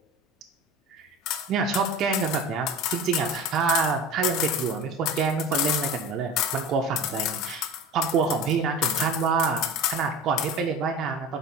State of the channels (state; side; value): normal; both; correlation 0.34